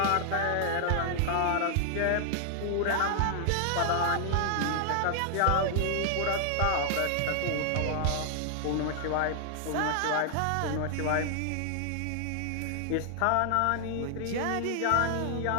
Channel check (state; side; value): different; both; correlation 0.00